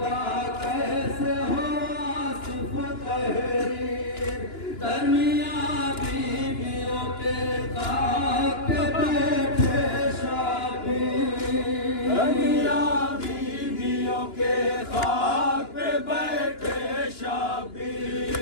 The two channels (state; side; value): late; right; 2.9 ms